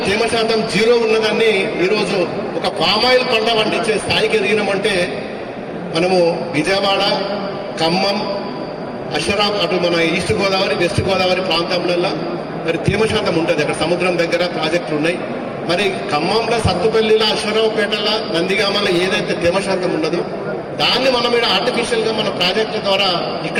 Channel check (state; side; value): identical; both; correlation 1.00